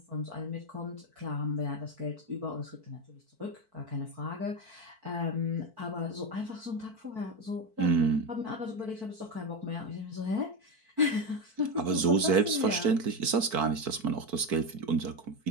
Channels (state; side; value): late; left; 4.5 ms